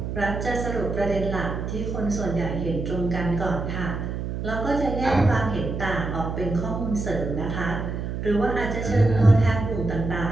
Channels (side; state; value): right; noise; hum, 4 dB below the sound